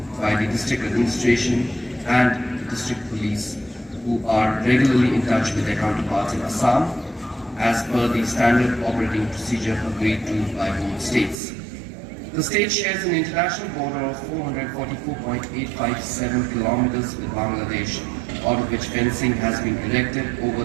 by the district administration and the district police, who are regularly in touch with their counterparts in Assam as per the standard operating procedure agreed to by both states. The state shares an international border of 444.857 kilometers with Bangladesh, out of which fencing has been erected over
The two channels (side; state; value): left; drops out; at 11.4 s